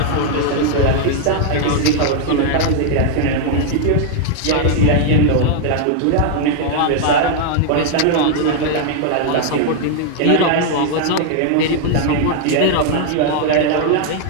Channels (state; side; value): different; both; correlation 0.00